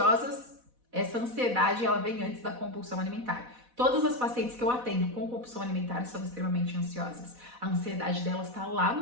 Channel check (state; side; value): late; left; 4.1 ms